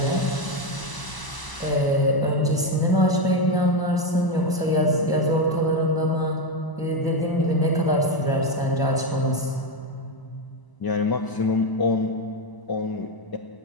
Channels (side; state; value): right; late; 1.0 ms